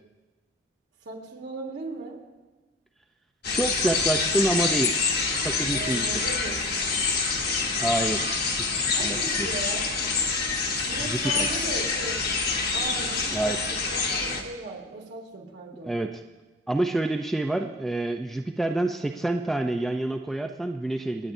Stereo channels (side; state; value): both; normal; correlation 0.37